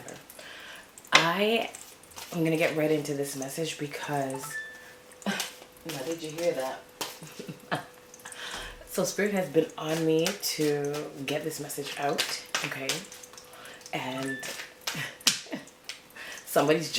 I am gonna get right into this message because now did you hear that? So Spirit has been on me to get this message out, okay? And somebody's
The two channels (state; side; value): identical; both; correlation 1.00